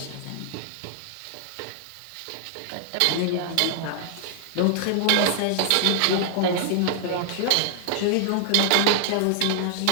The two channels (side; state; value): both; different; correlation 0.00